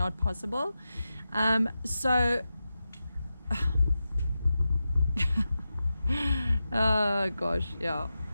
possible. So oh gosh, yeah.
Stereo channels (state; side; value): inverted; both; correlation -0.91